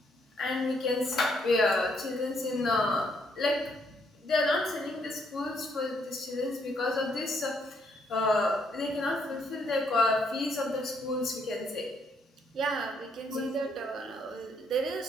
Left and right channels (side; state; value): both; normal; correlation 0.72